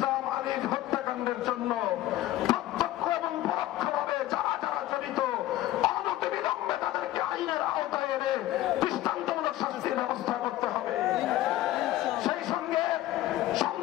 আলীর হত্যাকাণ্ডের জন্য প্রত্যক্ষ এবং পরোক্ষভাবে যারা যারা জড়িত অনতিবিলম্বে তাদেরকে আইনের আওতায় এনে দৃষ্টান্তমূলক শাস্তির ব্যবস্থা করতে হবে। সেই সঙ্গে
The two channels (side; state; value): right; quieter; 14.9 dB